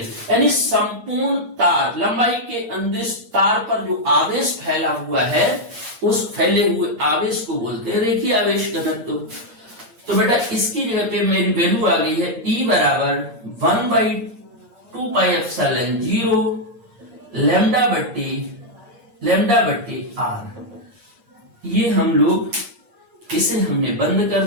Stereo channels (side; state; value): left; late; 8.5 ms